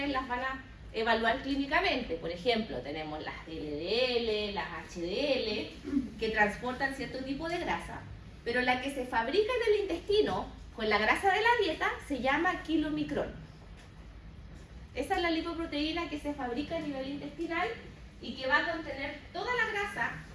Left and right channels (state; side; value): identical; both; correlation 1.00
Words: las van a evaluar clínicamente. Por ejemplo, tenemos las LDL, las HDL, que transportan cierto tipo de grasa, pero la que se fabrica en el intestino con la grasa de la dieta se llama kilomicrón. Esa es la lipoproteína que se fabrica a nivel intestinal y que va a contener toda la grasa